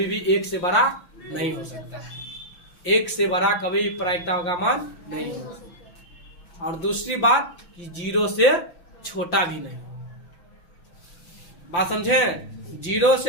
भी 1 से बड़ा नहीं हो सकता है। 1 से बड़ा कभी भी प्रायिकता का मान नहीं हो सकता। और दूसरी बात कि 0 से छोटा भी नहीं होगा। बात समझे, 0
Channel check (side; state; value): right; late; 5.8 ms